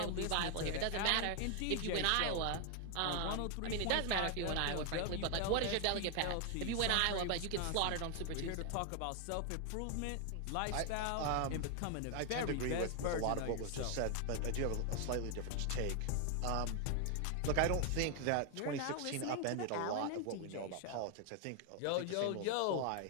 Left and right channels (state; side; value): different; both; correlation 0.00